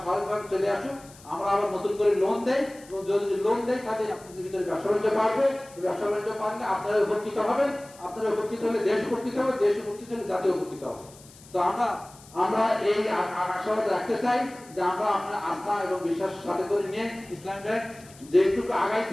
স্বাভাবিকভাবে চলে আসুক, আমরা আবার নতুন করে লোন দেই। এবং যদি লোন দেই তাহলে আপনাদের ভিতরে ব্যবসা বাণিজ্য বাড়বে। ব্যবসা বাণিজ্য বাড়লে আপনারা উপকৃত হবেন, আপনারা উপকৃত হলে দেশ উপকৃত হবে, দেশ উপকৃত হলে জাতীয় উপকৃত হবে। তো আমরা এই আশাবাদ রাখতে চাই যে আমরা আপনার আস্থা এবং বিশ্বাসের সাথে করে নিয়ে ইসলামী ব্যাংক যেটুকু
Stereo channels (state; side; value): noise; left; hiss, 22 dB below the sound